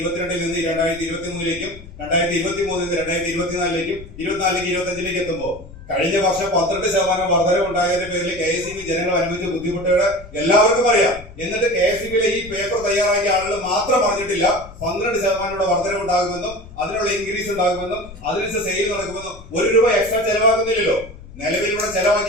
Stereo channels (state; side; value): noise; left; rumble, 17 dB below the sound